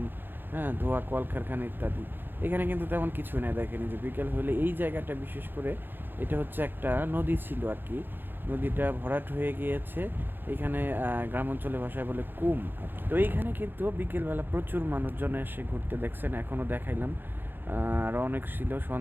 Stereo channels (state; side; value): late; left; 0.097 ms